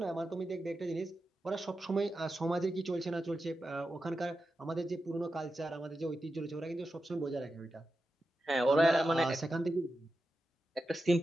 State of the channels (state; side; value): normal; both; correlation 0.90